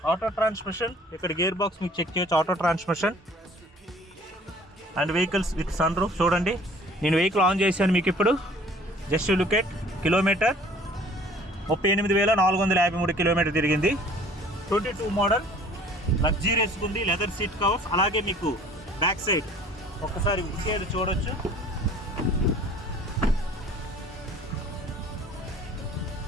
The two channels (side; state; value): both; normal; correlation 0.52